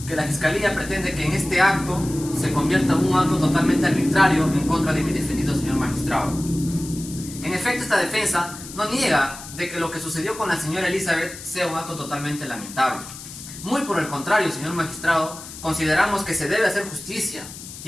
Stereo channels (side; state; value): left; noise; hiss, 13 dB below the sound